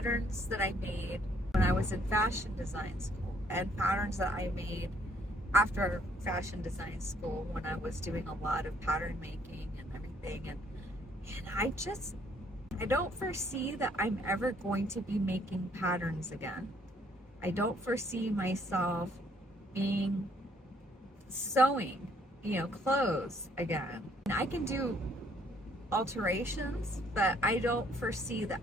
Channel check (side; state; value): both; normal; correlation 0.65